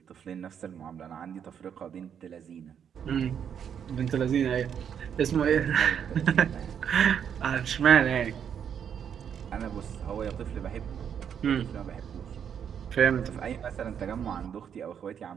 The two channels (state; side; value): quieter; left; 8.2 dB